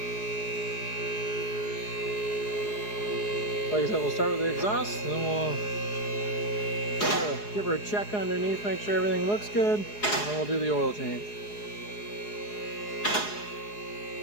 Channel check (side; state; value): right; late; 4.8 ms